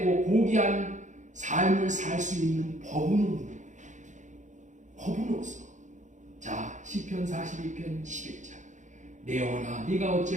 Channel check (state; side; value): late; left; 0.35 ms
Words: 고귀한 삶을 살 수 있는 법은 없는 거예요. 법은 없어. 자, 시편 42편 11절. 내 영혼아, 네가